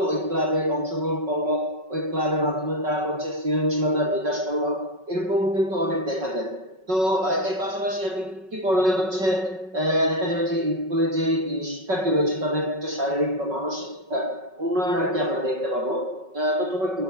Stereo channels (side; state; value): left; late; 5.4 ms